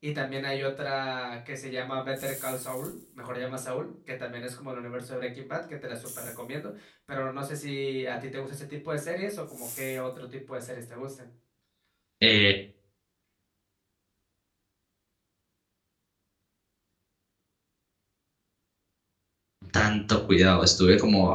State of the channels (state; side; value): identical; both; correlation 1.00